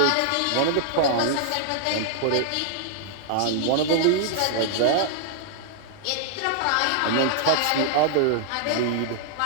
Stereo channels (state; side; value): different; both; correlation -0.01